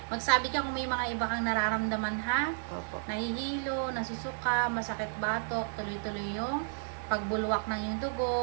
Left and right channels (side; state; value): left; silent; digital silence